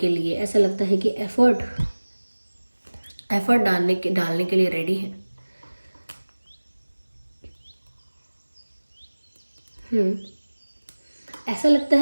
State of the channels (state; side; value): inverted; both; correlation -1.00